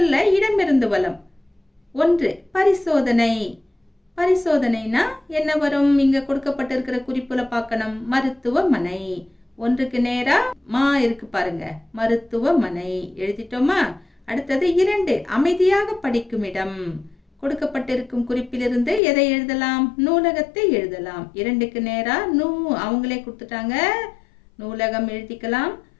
இடமிருந்து வலம். 1. பரிசோதனை. பரிசோதனைனா என்ன வரும்? இங்க கொடுக்கப்பட்டிருக்கிற குறிப்புல பார்க்கணும். மருத்துவமனை. 1க்கு நேரா மா இருக்கு பாருங்க, மருத்துவமனை எழுதிட்டோமா? அடுத்தது 2. அமைதியாக படிக்கும் இடம். கொடுக்கப்பட்டிருக்கும் குறிப்பிலிருந்து எதை எழுதலாம்? நூலகத்தை எழுதலாம். 2க்கு நேரா அவங்களே கொடுத்துட்டாங்க, நூலகம் எழுதிக்கலாம்.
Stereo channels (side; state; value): right; drops out; at 19.0 s